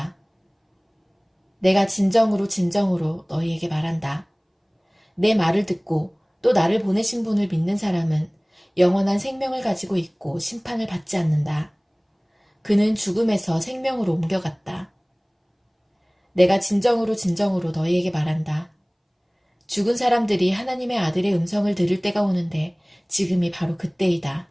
내가 진정으로 진정으로 너희에게 말한다. 내 말을 듣고 또 나를 보내신 분을 믿는 사람은 영원한 생명을 가지고 있고 심판을 받지 않는다. 그는 죽음에서 생명으로 옮겨갔다. 내가 진정으로 진정으로 너희에게 말한다. 죽은 사람들이 하나님의 아들의 음성을 들을 때가 오는데 지금이 바로 그때이다.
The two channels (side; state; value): both; identical; correlation 1.00